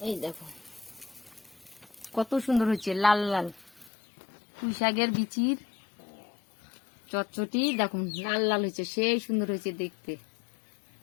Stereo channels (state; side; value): drops out; right; at 3.9 s